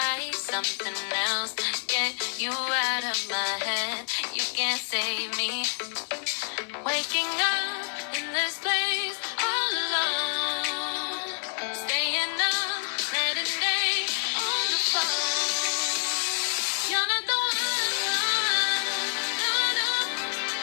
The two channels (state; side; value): silent; right; 60 dB below the other